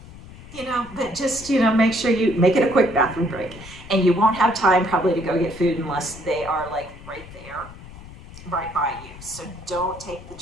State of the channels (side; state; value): left; noise; rumble, 17 dB below the sound